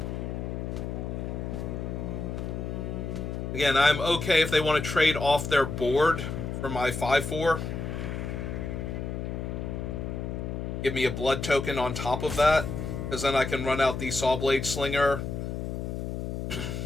Again, I'm okay if they want to trade off their board for my 5/4. Give me a blood token on top of that. Because then I can run out the Sawblade Slinger.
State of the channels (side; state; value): left; noise; hum, 4 dB below the sound